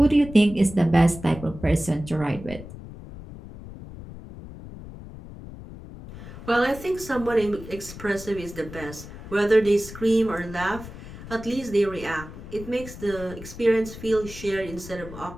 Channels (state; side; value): noise; left; rumble, 14 dB below the sound